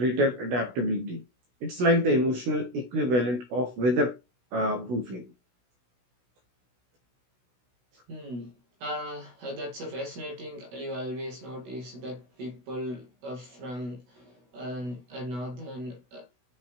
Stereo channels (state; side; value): late; left; 16 ms